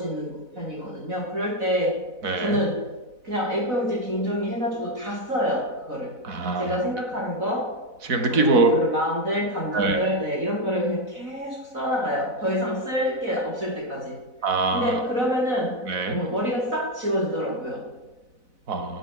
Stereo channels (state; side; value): late; left; 4.0 ms